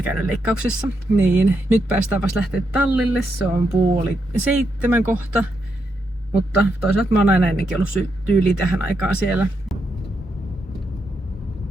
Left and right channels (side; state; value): both; normal; correlation 0.82